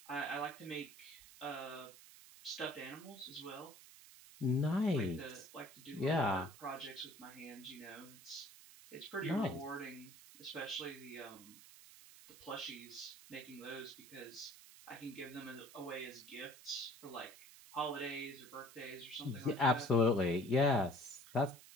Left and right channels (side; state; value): right; noise; hiss, 19 dB below the sound